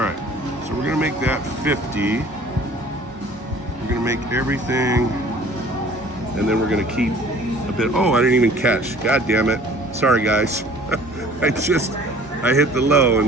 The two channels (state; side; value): normal; both; correlation 0.50